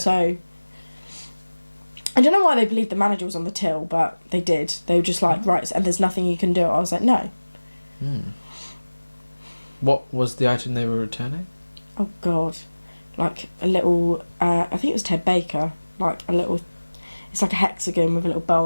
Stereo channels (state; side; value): inverted; both; correlation -1.00